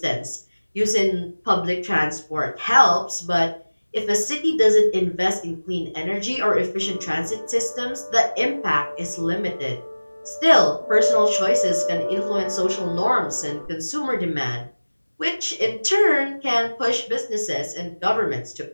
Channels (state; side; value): inverted; both; correlation -1.00